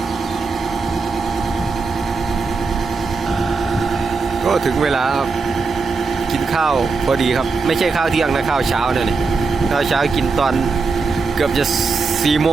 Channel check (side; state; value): left; quieter; 4.4 dB